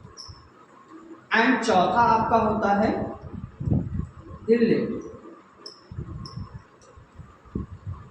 एंड चौथा आपका होता है रिलेटिव।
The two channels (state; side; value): identical; both; correlation 1.00